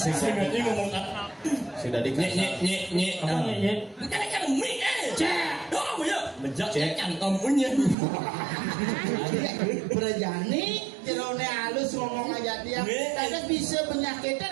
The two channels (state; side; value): drops out; left; at 8.0 s